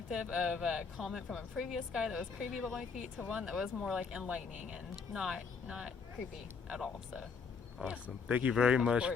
of a comment from a previous guy that was creepy about my feet to one that was more like enlightening and not creepy at all. So Awesome. Thank you very much. course.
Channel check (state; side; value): quieter; right; 5.4 dB